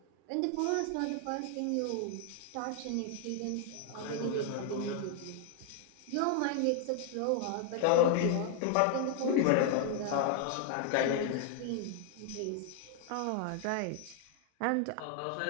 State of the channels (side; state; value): both; different; correlation 0.00